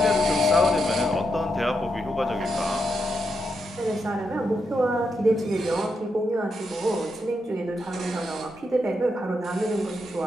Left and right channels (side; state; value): both; normal; correlation 0.83